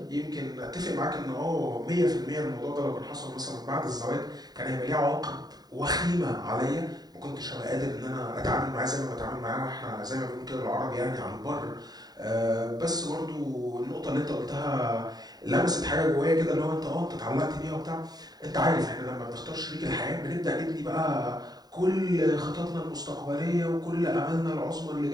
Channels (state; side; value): late; left; 0.19 ms